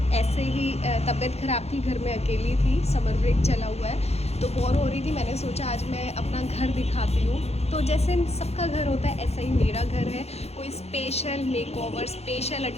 ऐसे ही तबीयत ख़राब थी, घर में अकेली थी, समर ब्रेक चला हुआ है तो बोर हो रही थी। मैंने सोचा आज मैं अपना घर दिखाती हूँ। तो जैसे सबका घर होता है ऐसा ही मेरा घर है, कोई स्पेशल मेकओवर, स्पेशल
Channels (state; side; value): late; right; 0.31 ms